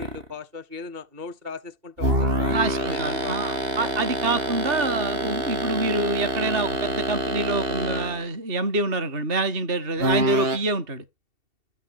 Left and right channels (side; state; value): left; late; 2.7 ms